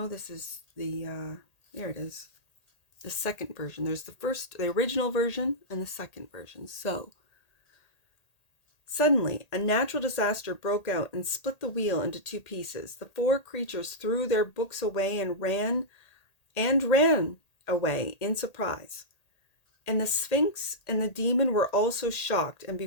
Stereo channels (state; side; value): late; right; 1.8 ms